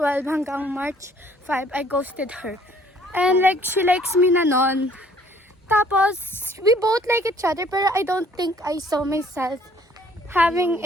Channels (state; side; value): normal; both; correlation 0.59